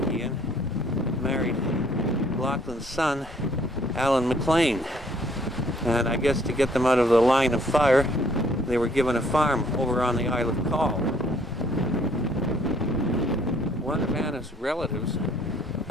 son Alan McLean. And I guess to get them out of the line of fire, they were given a farm over on the Isle of Coll. One of Anna's relatives,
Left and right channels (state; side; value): normal; both; correlation 0.63